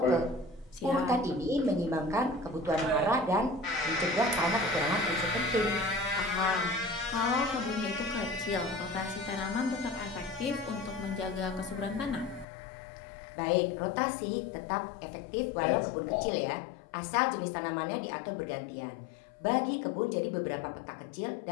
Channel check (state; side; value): drops out; right; at 12.5 s